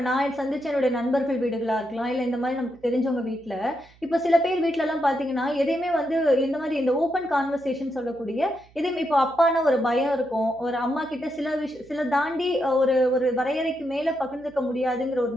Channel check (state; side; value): noise; right; hum, 28 dB below the sound